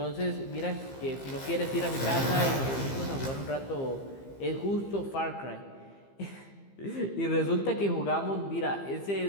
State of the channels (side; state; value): right; late; 15 ms